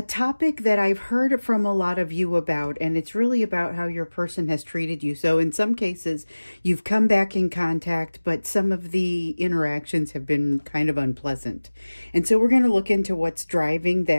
topic that I've heard from a lot of you about, and it's really about how your person has treated you. So in some cases, you've come back in contact, but some of the interactions have been kind of unpleasant. And so we're going to look into what's driving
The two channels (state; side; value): inverted; both; correlation -1.00